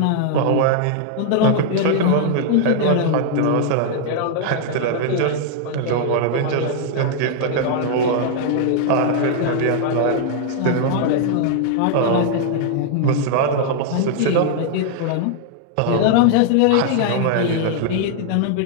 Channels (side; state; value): both; different; correlation 0.00